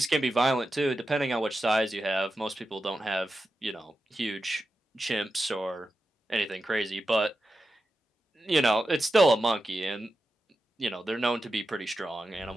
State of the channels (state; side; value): normal; both; correlation 0.90